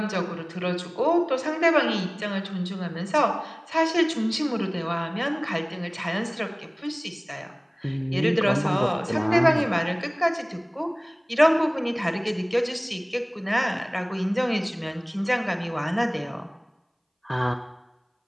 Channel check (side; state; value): both; identical; correlation 1.00